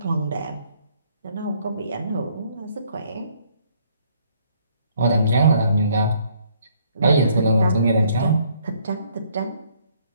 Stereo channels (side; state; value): both; inverted; correlation -0.65